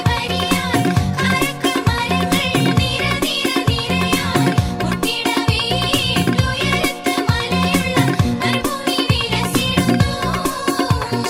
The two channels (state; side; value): identical; both; correlation 1.00